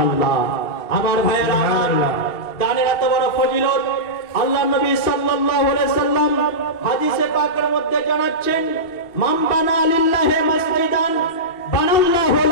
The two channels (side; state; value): right; late; 2.7 ms